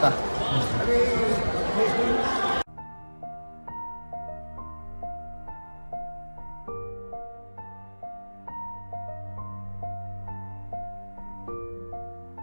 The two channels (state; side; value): inverted; both; correlation -1.00